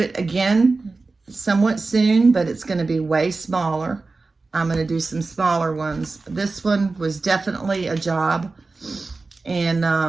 again somewhat soon, but it's going to be way smaller. I'm going to do some smaller ones. This one was definitely a job.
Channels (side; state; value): left; quieter; 3.7 dB